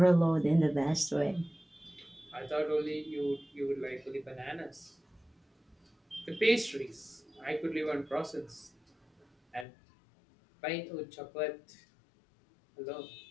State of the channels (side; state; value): right; drops out; at 9.7 s